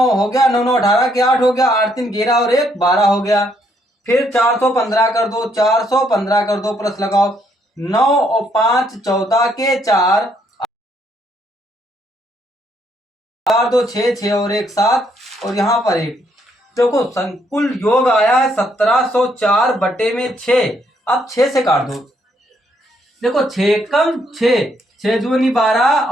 हो गया, 9 9 18 के 8 हो गया, 8 3 11 और 1 12 हो गया। फिर 415 कर दो, 415 कर दो, प्लस लगाओ 9 और 5 14 के 4, 4 2 6 6 और 1 7, और यहाँ पर 1। देखो संकुल योग आया है 1704 बटे में 6। अब 6 से काट दो। देखो 6 कम 6, 6 दूनी 12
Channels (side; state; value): both; normal; correlation 0.71